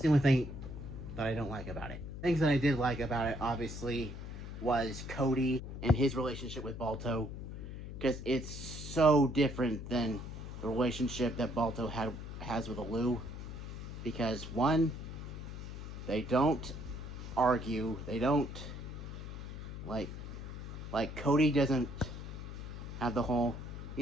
only thing that I don't like about it. Things that I did like about it, obviously, was Cody and his relationship with Balto, because it's so different than the relationship that Balto has with Alou. Because one, they don't argue, they don't like Cody doesn't have the whole,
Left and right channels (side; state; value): left; noise; hum, 9 dB below the sound